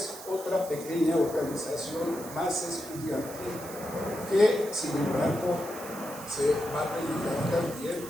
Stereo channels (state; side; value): noise; right; hiss, 14 dB below the sound